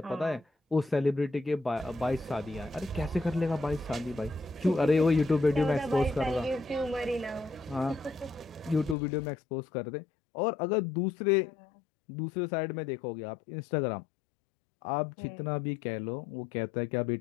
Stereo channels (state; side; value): drops out; right; at 9.0 s